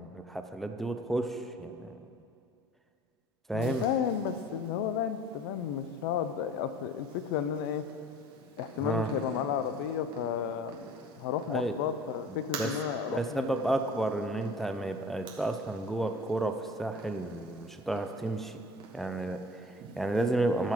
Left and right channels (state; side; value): normal; both; correlation 0.45